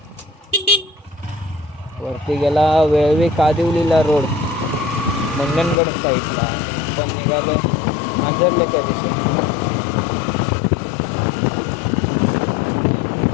वरती गेला वेळवी कादिवलीला रोड मंडणगड साईडला. आपण निघालो मांजरल्याच्या दिशेने.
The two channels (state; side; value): drops out; right; at 5.8 s